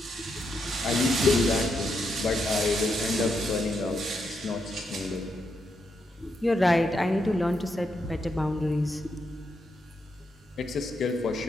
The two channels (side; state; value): both; normal; correlation 0.81